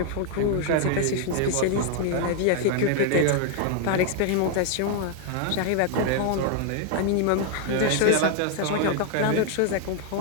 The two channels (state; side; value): different; both; correlation 0.00